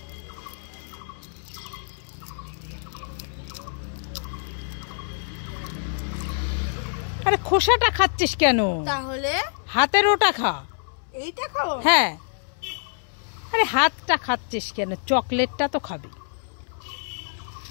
আরে খোসাটা খাচ্ছিস কেন? তাহলে হাতের ওটা খা। এইটা খাবো? হ্যাঁ। আরে হাতটা খাচ্ছিস কেন? চকলেটটা তো খাবি।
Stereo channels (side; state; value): right; silent; 61 dB below the other